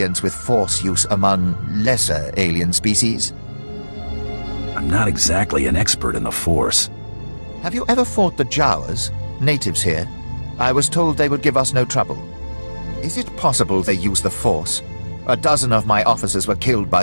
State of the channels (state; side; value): inverted; both; correlation -1.00